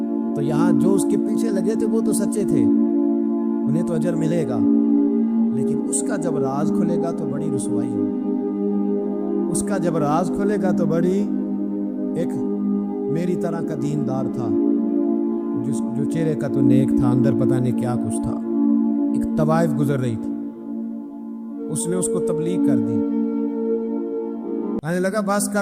تو یہاں جو اس کے پیچھے لگے تھے وہ تو سچے تھے، انہیں تو اجر ملے گا، لیکن اس کا جب راز کھلے گا تو بڑی رسوائی ہوگی۔ اس کا جب راز کھلے گا تو بڑی، ایک میری طرح کا دیندار تھا، جو چہرے کا تو نیک تھا، اندر پتہ نہیں کیا کچھ تھا، ایک طوائف گزر رہی تھی، اس نے اس کو تبلیغ کر دی، کہنے لگا بس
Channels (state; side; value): identical; both; correlation 1.00